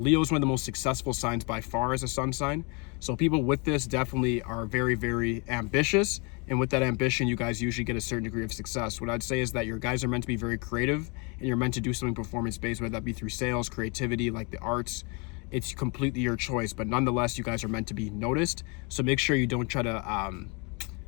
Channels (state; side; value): quieter; right; 32.0 dB